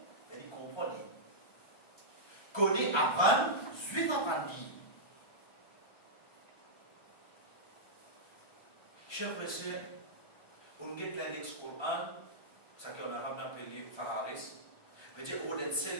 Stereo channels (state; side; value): late; right; 1.3 ms